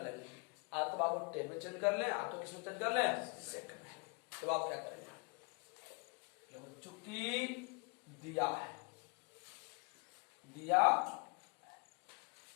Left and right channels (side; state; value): right; quieter; 34.6 dB